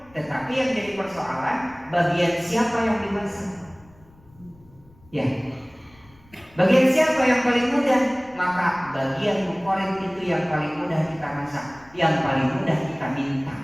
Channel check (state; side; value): noise; left; rumble, 27 dB below the sound